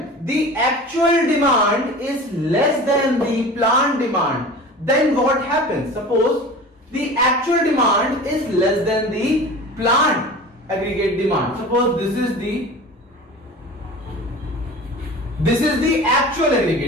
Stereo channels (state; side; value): normal; both; correlation 0.37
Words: the actual demand is less than the planned demand, then what happens? Suppose the actual demand is less than the planned aggregate demand. Suppose this is the actual